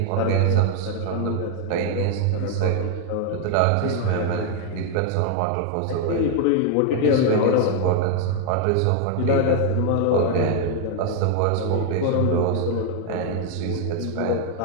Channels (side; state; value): both; different; correlation 0.00